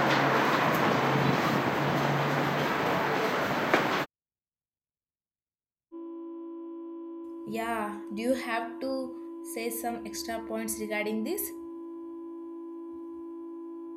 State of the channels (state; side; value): identical; both; correlation 1.00